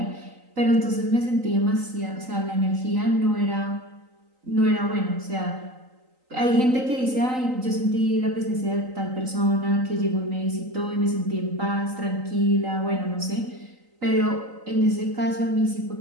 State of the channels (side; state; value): left; late; 3.9 ms